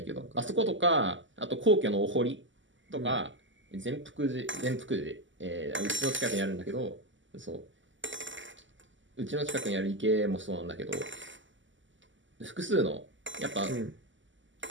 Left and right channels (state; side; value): late; left; 0.55 ms